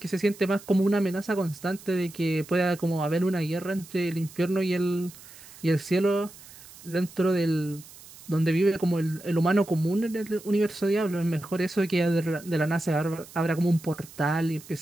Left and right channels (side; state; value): right; noise; hiss, 19 dB below the sound